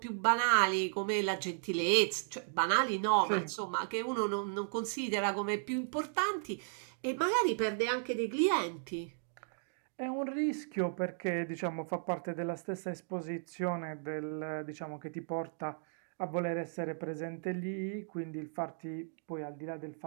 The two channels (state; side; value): silent; left; digital silence